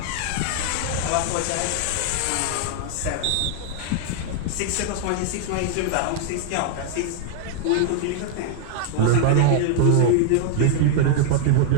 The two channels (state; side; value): different; both; correlation 0.00